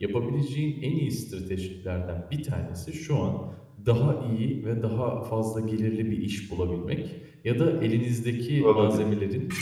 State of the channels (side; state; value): both; identical; correlation 1.00